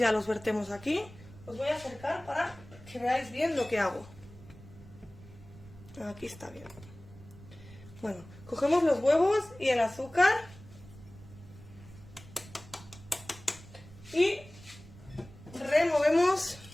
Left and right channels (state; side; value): noise; right; rumble, 19 dB below the sound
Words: los vertemos aquí. Os voy a acercar para que veáis bien lo que hago. Aquí está bien. Bueno, cogemos los huevos y el azúcar y removemos